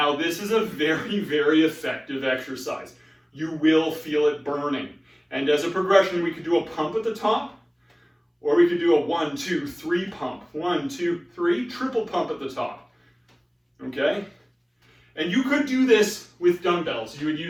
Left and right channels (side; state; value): both; identical; correlation 1.00